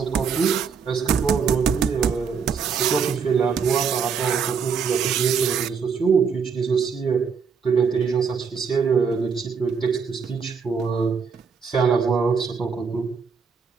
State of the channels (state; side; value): quieter; left; 6.0 dB